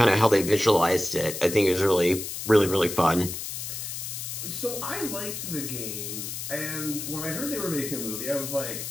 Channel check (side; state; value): left; noise; hiss, 6 dB below the sound